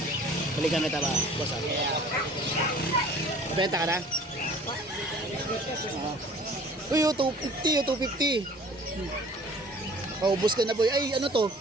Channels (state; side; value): normal; both; correlation 0.49